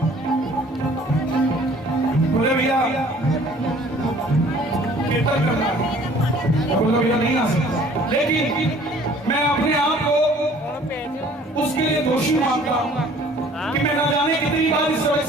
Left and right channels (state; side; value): normal; both; correlation 0.53